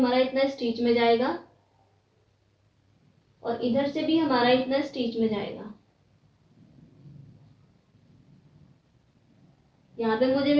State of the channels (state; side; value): identical; both; correlation 1.00